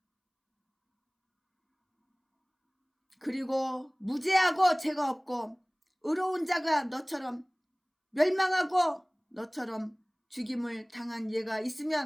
그리고 무죄하고 죄가 없고 의로운 자가 너처럼 멸망하고 너처럼 죽임을 당한 예가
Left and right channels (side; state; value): both; identical; correlation 1.00